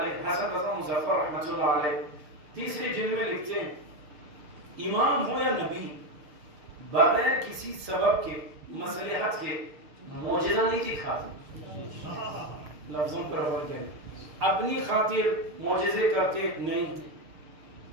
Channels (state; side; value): late; left; 6.5 ms